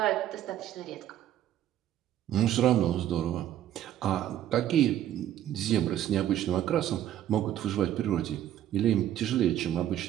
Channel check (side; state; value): left; quieter; 11.7 dB